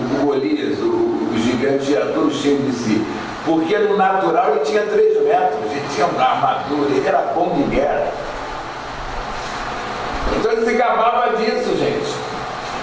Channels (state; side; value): identical; both; correlation 1.00